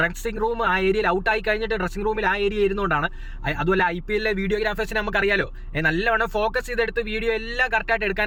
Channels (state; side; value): identical; both; correlation 1.00